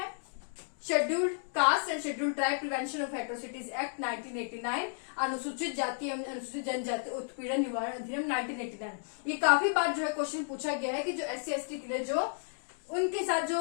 scheduled caste and scheduled tribe prevention of atrocities act 1989, अनुसूचित जाति एवं अनुसूचित जनजाति उत्पीड़न निवारण अधिनियम 1989। ये काफी बार जो है क्वेश्चन पूछा गया है कि जो SC/ST के लिए जो उनके साथ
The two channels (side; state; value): right; silent; digital silence